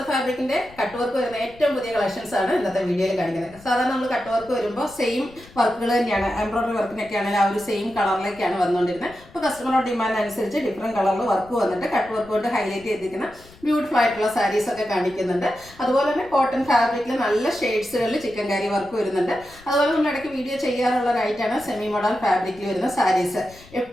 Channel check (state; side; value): noise; left; rumble, 23 dB below the sound